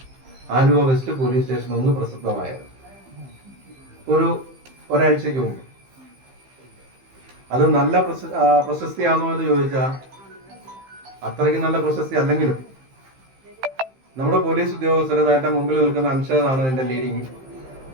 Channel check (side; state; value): left; late; 15 ms